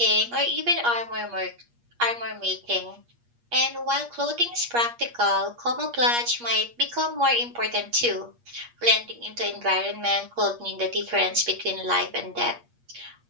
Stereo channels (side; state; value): left; late; 8.4 ms